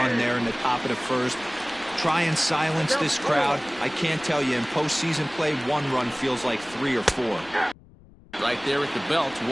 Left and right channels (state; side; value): noise; left; rumble, 24 dB below the sound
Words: there in the top of the first. Try and silence this crowd. I can't tell you, in postseason play, one run feels like 3 or 4. Right there at the belt,